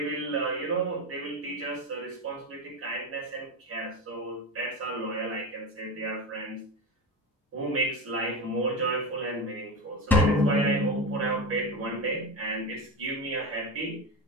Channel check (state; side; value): normal; both; correlation 0.20